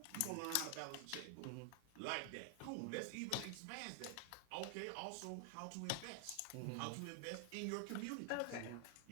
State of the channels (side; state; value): both; different; correlation 0.00